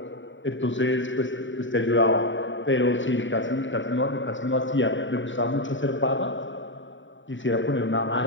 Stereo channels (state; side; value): late; right; 0.55 ms